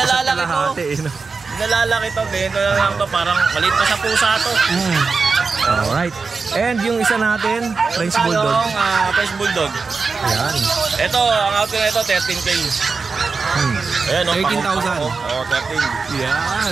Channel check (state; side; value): quieter; left; 4.6 dB